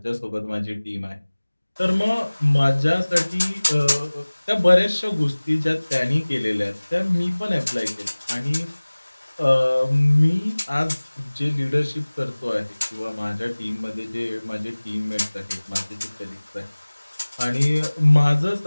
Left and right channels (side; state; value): both; inverted; correlation -1.00